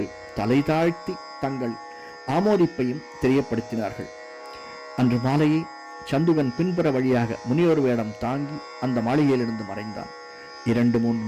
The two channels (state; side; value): identical; both; correlation 1.00